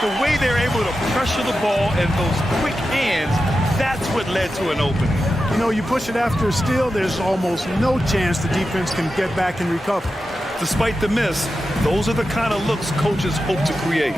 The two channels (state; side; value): normal; both; correlation 0.91